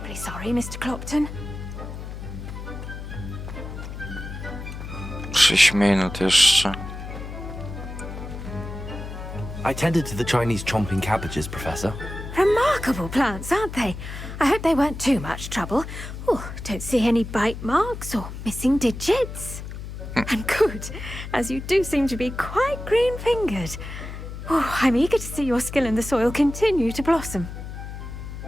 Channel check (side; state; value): left; noise; hum, 9 dB below the sound